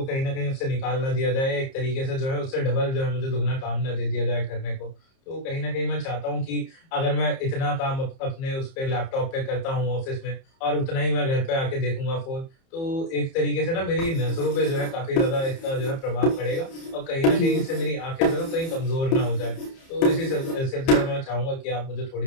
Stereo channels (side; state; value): right; late; 30 ms